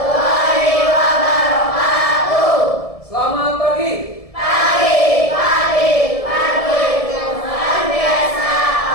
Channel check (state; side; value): late; right; 1.7 ms